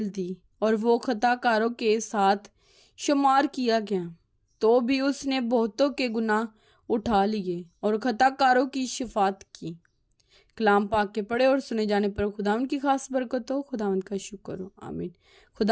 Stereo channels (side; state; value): both; identical; correlation 1.00